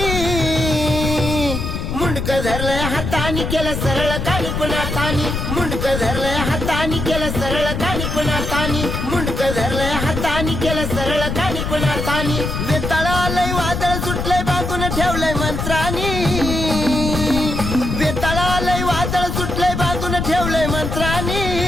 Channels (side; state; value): left; noise; rumble, 3 dB below the sound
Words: मुंडक धरलंय हातानी केलं सरळ कानी पुन्हा तानी, मुंडक धरलंय हातानी केलं सरळ कानी पुन्हा तानी, मुंडक धरलंय हातानी केलं सरळ कानी पुन्हा तानी, बेताळालय वादळ सुटलंय बांधून ठेवलंय मंत्रानी, बेताळालय वादळ सुटलंय बांधून ठेवलंय मंत्रानी,